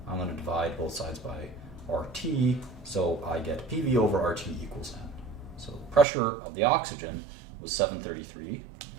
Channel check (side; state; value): left; drops out; at 6.1 s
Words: I'm going to divide both sides by RT, so I get PV over RT equals N. So the pressure of the oxygen was 733.